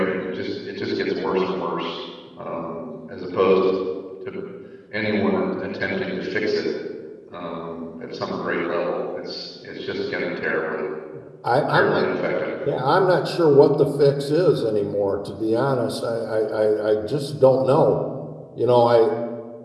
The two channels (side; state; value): both; identical; correlation 1.00